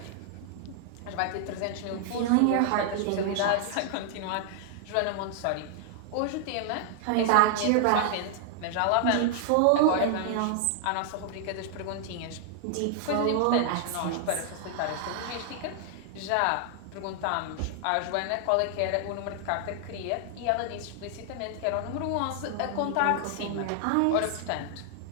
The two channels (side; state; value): both; different; correlation -0.01